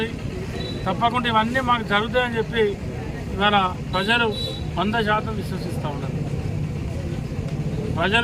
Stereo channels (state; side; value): identical; both; correlation 1.00